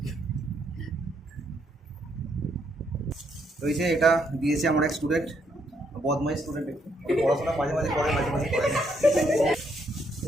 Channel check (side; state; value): both; normal; correlation 0.73